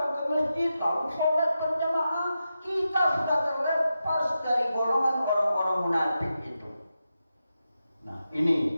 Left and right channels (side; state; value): both; inverted; correlation -0.89